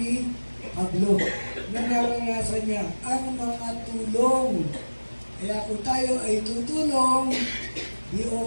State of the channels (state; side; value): inverted; both; correlation -1.00